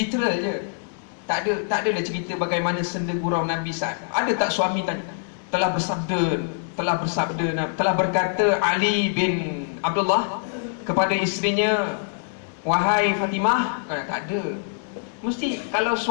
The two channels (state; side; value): silent; right; digital silence